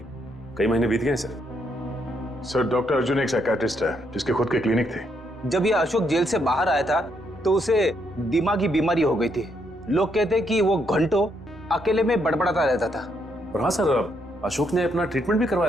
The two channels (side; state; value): both; normal; correlation 0.75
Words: कई महीने बीत गए सर। सर डॉक्टर अर्जुन एक साइकियाट्रिस्ट है जिसके खुद के क्लिनिक थे। जब ये अशोक जेल से बाहर आया था तो उसे दिमागी बीमारी हो गई थी। लोग कहते कि वो घंटों अकेले में बड़बड़ाता रहता था। और हाँ सर, अशोक ने अपना ट्रीटमेंट भी